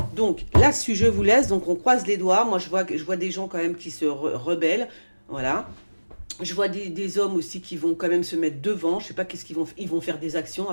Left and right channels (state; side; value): inverted; both; correlation -1.00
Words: Donc, là-dessus, je vous laisse. Donc, on croise les doigts. Moi, je vois des gens quand même qui se rebellent. Voilà. Je vois des hommes aussi qui vont quand même se mettre devant. Je sais pas qu'est-ce qu'ils vont. Ils vont faire des actions